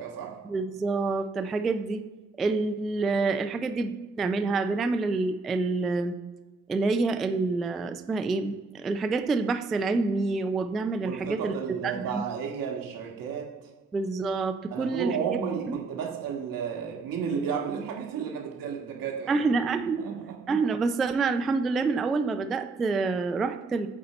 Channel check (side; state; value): left; quieter; 3.8 dB